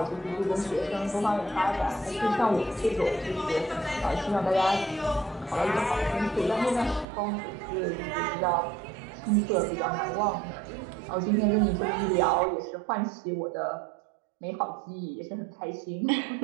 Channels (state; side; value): drops out; left; at 7.1 s